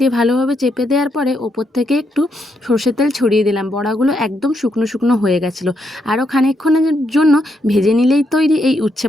দিয়ে ভালোভাবে চেপে দেওয়ার পরে ওপর থেকে একটু সর্ষের তেল ছড়িয়ে দিলাম। বড়াগুলো একদম শুকনো শুকনো হয়ে গেছিলো। আরও খানিকক্ষণের জন্য ভেজে নিলেই তৈরি এই উচ্ছে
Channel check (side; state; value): both; normal; correlation 0.78